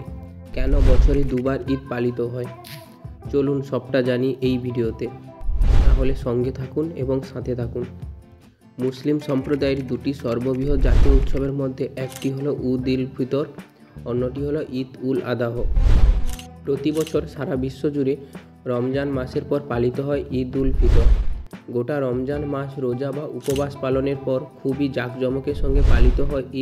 কেন বছরে দুবার ঈদ পালিত হয়। চলুন সবটা জানি এই ভিডিওতে, তাহলে সঙ্গে থাকুন এবং সাথে থাকুন। মুসলিম সম্প্রদায়ের দুটি সর্ববৃহৎ জাতীয় উৎসবের মধ্যে একটি হলো ঈদ উল ফিতর, অন্যটি হলো ঈদ উল আদাহ। প্রতি বছর সারা বিশ্ব জুড়ে রমজান মাসের পর পালিত হয় ঈদ উল ফিতর। গোটা রমজান মাস রোজা বা উপবাস পালনের পর খুবই জাঁকজমকের সঙ্গে পালিত হয়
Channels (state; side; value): identical; both; correlation 1.00